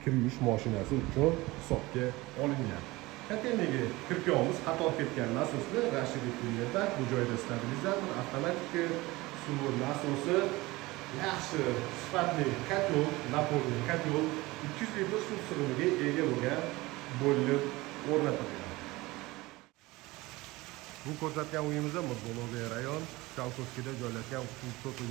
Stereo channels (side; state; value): left; quieter; 20.9 dB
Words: kir yuvish mashinasi uchun hisobga olingan. Kotelniga kirpiyamiz qator ketgan nasoslar Rashidov kunlarda bu joyda stabilizator, avtomatik suv nasosi, yaxshi sifatli kotel, napolni kotel 200 litr suv sig'imiga ega bo'lgan bo'lib o'rnatilgan. Bu ko'rsatgan uyimizda Murdo'loviy rayon Chalkovskida joylashgan 3